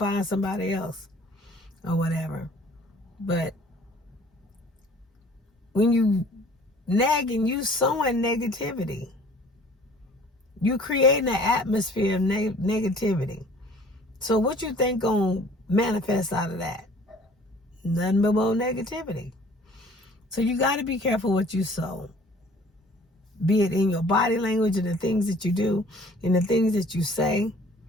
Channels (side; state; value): both; normal; correlation 0.52